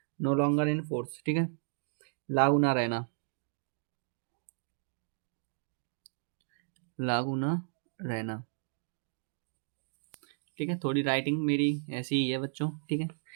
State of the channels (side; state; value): left; silent; digital silence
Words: No longer in force. ठीक है। लागू ना रहना। लागू ना रहना। ठीक है। थोड़ी राइटिंग मेरी ऐसी ही है बच्चों। ठीक है।